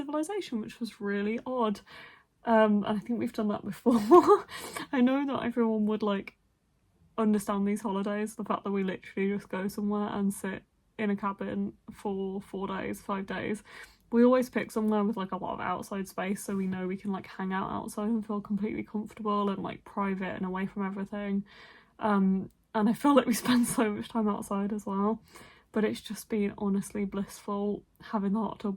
which was really odd. And I think we've done that before. I know that everyone would like understand these holidays, the fact that we literally just go somewhere and sit in a cabin for 4 days, 5 days. We always pick somewhere with like a lot of outside space, so we know we can like hang out outside and feel completely comfortable and like private and away from everything. And I feel like we spend so much time outside as well. But it's just been honestly blissful. Having the hot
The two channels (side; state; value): both; identical; correlation 1.00